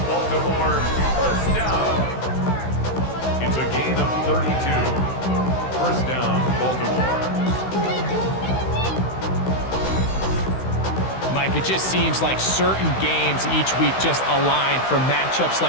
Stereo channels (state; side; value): late; right; 16 ms